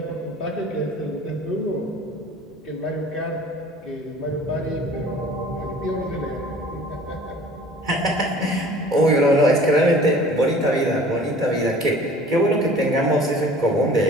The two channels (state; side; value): normal; both; correlation 0.48